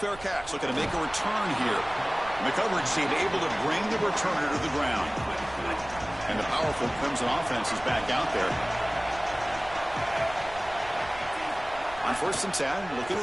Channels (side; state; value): right; noise; rumble, 18 dB below the sound